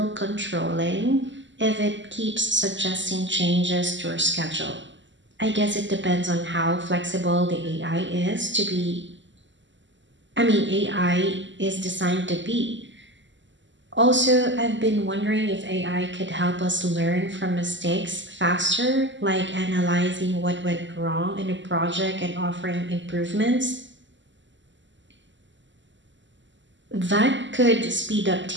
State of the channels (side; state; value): left; late; 0.54 ms